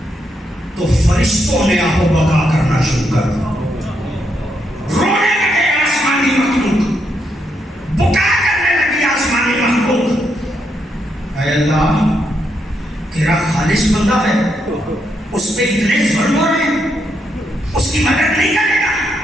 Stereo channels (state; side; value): normal; both; correlation 0.79